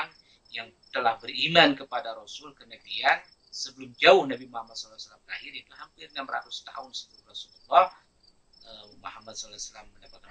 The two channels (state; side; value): identical; both; correlation 1.00